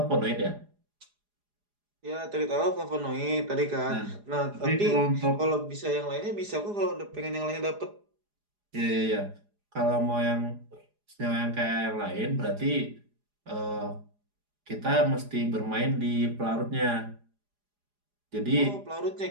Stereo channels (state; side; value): late; left; 4.9 ms